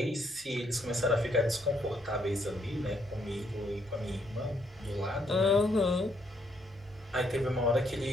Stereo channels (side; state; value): both; normal; correlation 0.72